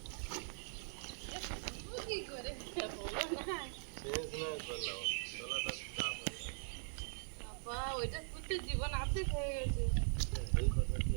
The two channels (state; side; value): silent; left; 50 dB below the other